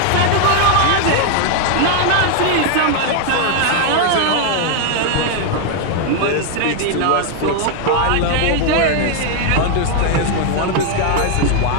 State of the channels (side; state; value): both; different; correlation 0.00